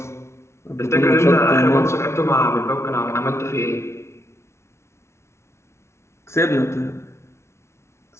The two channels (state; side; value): late; right; 0.13 ms